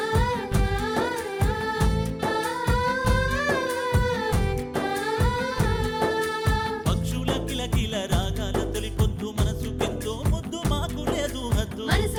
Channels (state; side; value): identical; both; correlation 1.00